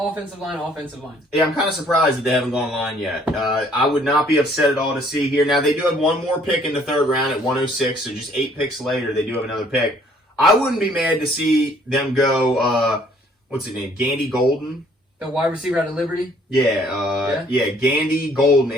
line, offensive line. Yeah, I'm kind of surprised that they haven't gone line yet. I would not be upset at all to see here. Now, they do have one more pick in the third round at 106, so just 8 picks later, they do have another pick. I wouldn't be mad to see them go, what's his name, Gandy Golden? The wide receiver out of Liberty? Yeah, Gandy Golden,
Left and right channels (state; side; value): normal; both; correlation 0.61